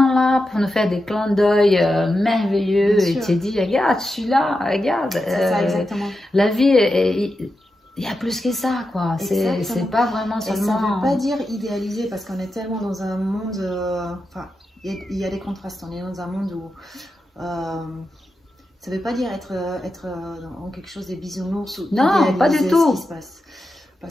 là pour nous faire des clins d'œil merveilleux. Et tu te dis, regarde, je suis là, regarde. C'est ça, exactement. La vie il y a plus que ça, quoi. C'est pas vraiment seulement... Et ça veut pas dire idéaliser, parce qu'on est tellement dans un monde... Enfin, il y a des contrastes. On est dans un monde où... ça veut pas dire être dans quelque chose de bisounours ou non, pas du tout. Ce qui se passe.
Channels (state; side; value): normal; both; correlation 0.89